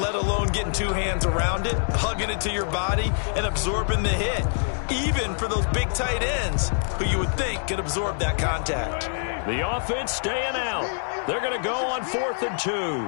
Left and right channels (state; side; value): silent; right; digital silence